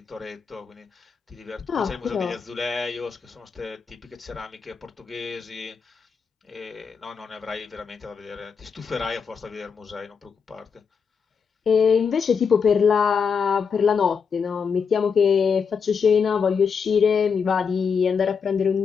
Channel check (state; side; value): quieter; right; 6.1 dB